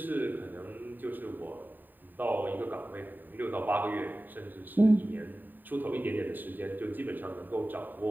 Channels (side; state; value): left; late; 0.090 ms